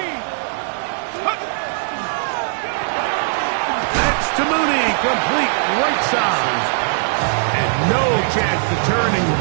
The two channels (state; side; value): silent; left; 63 dB below the other